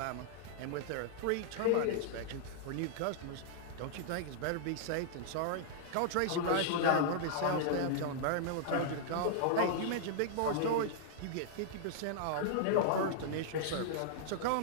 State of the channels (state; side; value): different; both; correlation -0.01